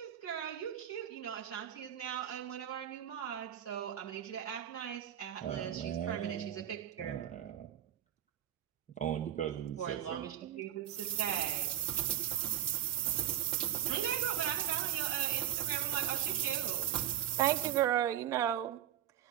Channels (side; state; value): left; quieter; 11.0 dB